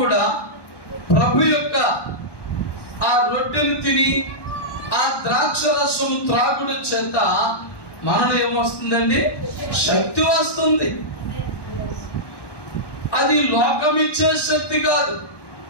ప్రభు యొక్క ఆ రొట్టెను తిని ఆ ద్రాక్ష రసం త్రాగుడు చేత మనలో ఏమొస్తుందండి? శక్తి వస్తుంది. అది లోకం ఇచ్చే శక్తి కాదు,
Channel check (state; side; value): late; right; 1.2 ms